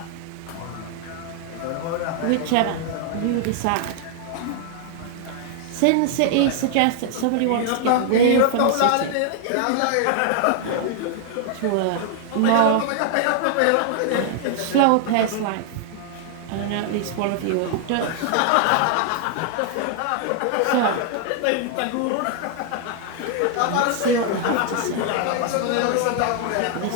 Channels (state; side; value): different; both; correlation 0.00